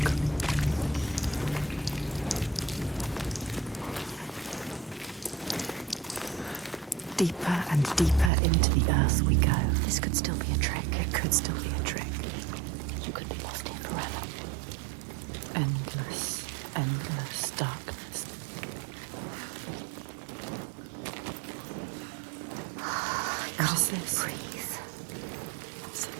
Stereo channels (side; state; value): left; drops out; at 8.3 s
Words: Deeper and deeper into the earth we go. This could still be a trick. It could still be a trick. You could be lost here forever. Endless, endless darkness. What is this? Breathe.